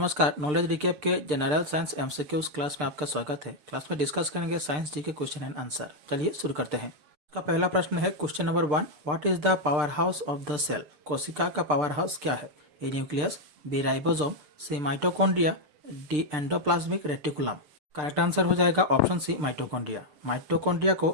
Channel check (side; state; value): left; late; 6.7 ms